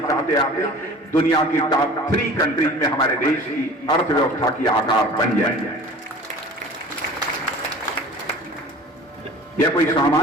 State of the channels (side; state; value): both; normal; correlation 0.42